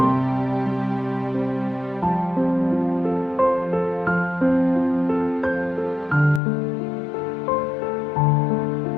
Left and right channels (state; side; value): drops out; right; at 6.4 s